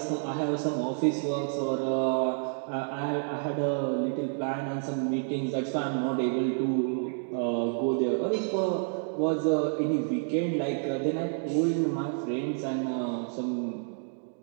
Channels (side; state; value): left; silent; digital silence